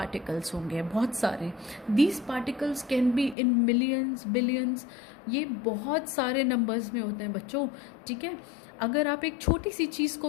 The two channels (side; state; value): right; drops out; at 3.4 s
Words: होंगे, बहुत सारे। These particles can be in millions, billions, ये बहुत सारे नंबर्स में होते हैं बच्चों, ठीक है। अगर आप एक छोटी सी चीज़